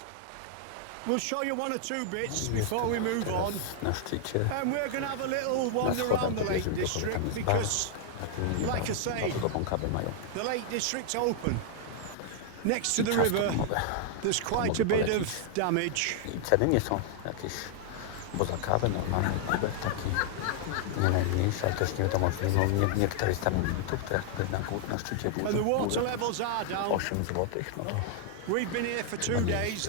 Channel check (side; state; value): both; different; correlation -0.01